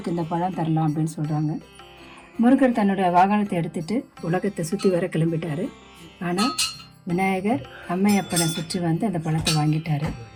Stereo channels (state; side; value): identical; both; correlation 1.00